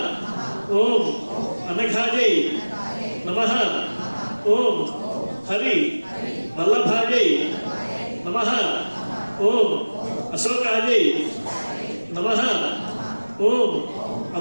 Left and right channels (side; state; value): both; inverted; correlation -1.00